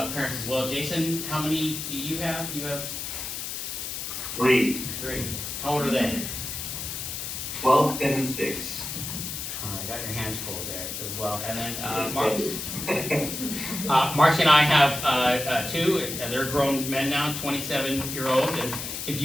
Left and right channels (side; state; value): left; noise; hiss, 5 dB below the sound